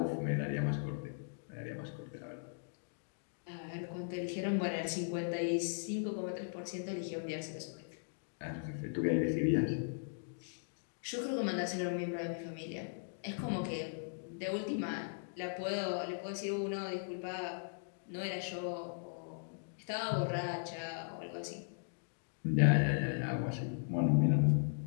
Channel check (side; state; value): right; silent; digital silence